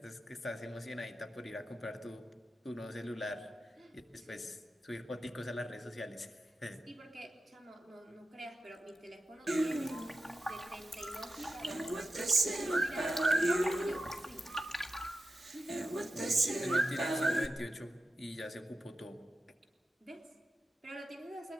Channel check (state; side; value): normal; both; correlation 0.91